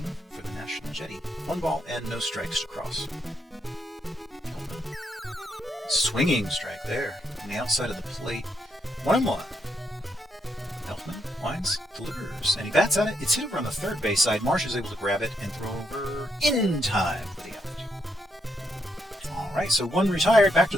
for the National Jetty. 1 ball and no strikes to Cross. Swinging strike there on the outside of the plate. 1-1. Elfman winds, delivers, and he bats at it. It's hit over on the third base side. Marsh is able to grab it and throw over in time for the out. All right, so 1 retired. Back to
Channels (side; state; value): both; normal; correlation 0.77